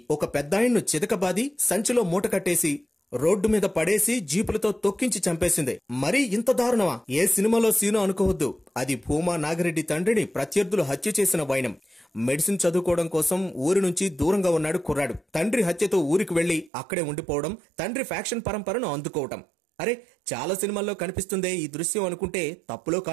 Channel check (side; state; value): left; drops out; at 16.7 s